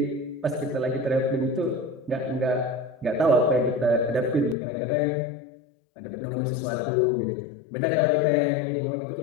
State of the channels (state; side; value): drops out; right; at 4.5 s